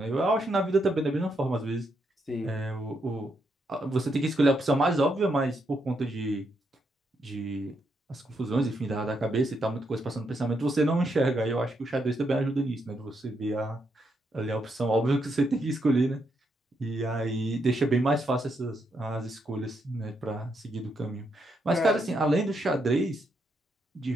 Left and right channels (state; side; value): normal; both; correlation 0.79